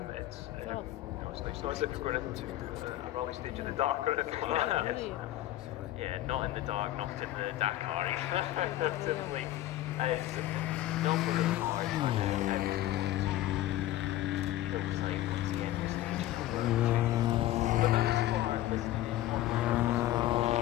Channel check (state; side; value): quieter; right; 14.7 dB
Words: It's not as if you're going into a rally stage in the dark or anything like that. Yes. Yeah, not in the dark, not in the Dakar. Typically, as not for the cars, hillside once again for stage 4. For those who are listening